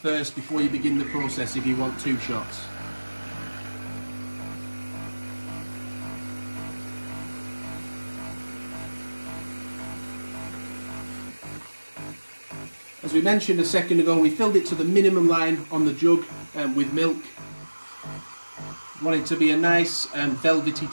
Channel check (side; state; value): both; inverted; correlation -1.00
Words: before you begin the process if you want 2 shots. As we mentioned a second ago, we filled it to the minimum line on the jug with milk. Want it to be a nice velvety